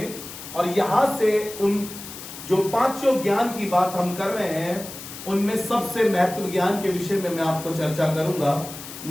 और यहां से उन जो 5 ज्ञान की बात हम कर रहे हैं, उनमें सबसे महत्व ज्ञान के विषय में मैं आपको चर्चा करूंगा।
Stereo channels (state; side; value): noise; left; hiss, 12 dB below the sound